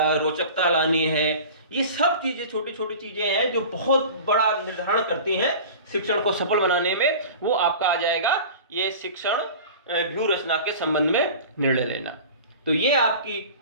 रोचकता लानी है। ये सब चीजें छोटी छोटी चीजें हैं जो बहुत बड़ा निर्धारण करती हैं शिक्षण को सफल बनाने में। वो आपका आ जाएगा ये शिक्षण व्यूह रचना के संबंध में निर्णय लेना। तो ये आपकी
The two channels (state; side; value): inverted; both; correlation -0.38